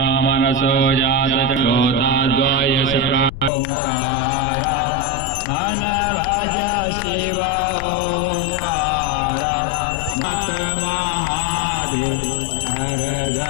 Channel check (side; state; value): left; noise; rumble, 11 dB below the sound